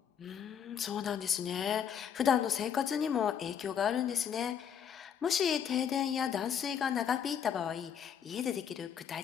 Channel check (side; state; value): right; quieter; 8.2 dB